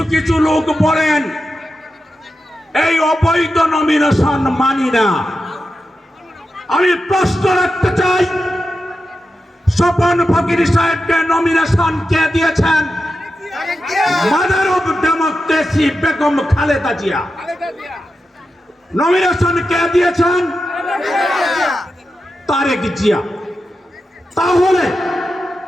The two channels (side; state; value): both; normal; correlation 0.90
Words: কিছু লোক বলেন এই অবৈধ নমিনেশন মানি না। আমি প্রশ্ন রাখতে চাই, স্বপন ফকির সাহেবকে নমিনেশন কে দিয়েছেন? Mother of democracy Begum Khaleda Zia. Nomination কে দিয়েছেন? তারেক জিয়া। তাহলে